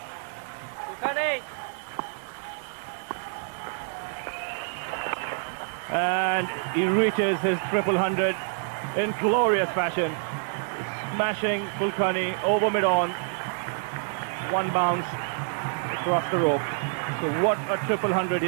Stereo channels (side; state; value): left; silent; digital silence